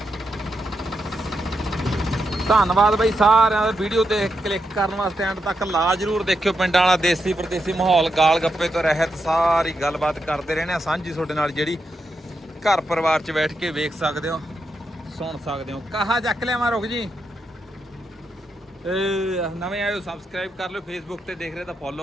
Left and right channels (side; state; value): both; normal; correlation 0.84